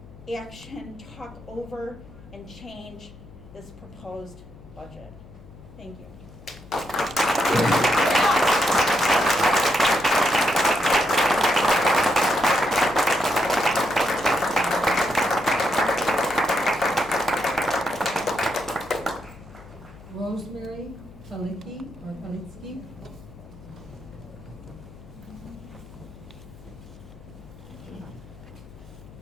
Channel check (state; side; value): noise; left; hum, 19 dB below the sound